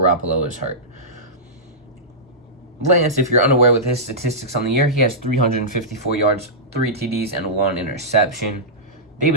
is hurt. Lance, if you're unaware with his statistics on the year, he has 354 yards, 3 TDs, and 1 interception.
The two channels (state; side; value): normal; both; correlation -0.14